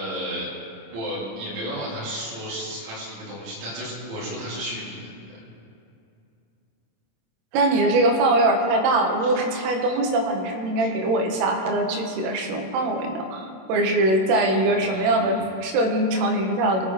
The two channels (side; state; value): left; late; 27 ms